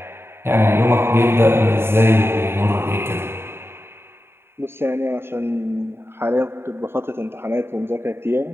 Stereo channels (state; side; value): late; left; 0.11 ms